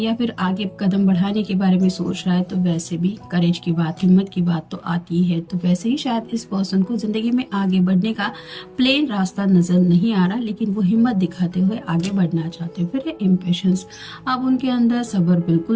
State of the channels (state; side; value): identical; both; correlation 1.00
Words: फिर आगे कदम बढ़ाने के बारे में सोच रहा है तो वैसे भी करेज की बात, हिम्मत की बात तो आती है। तो वैसे ही शायद इस पर्सन को ज़िंदगी में आगे बढ़ने का प्लेन रास्ता नज़र नहीं आ रहा, लेकिन वो हिम्मत दिखाते हुए आगे बढ़ना चाहते हैं। फिर है इम्पेशंस। अब उनके अंदर सब्र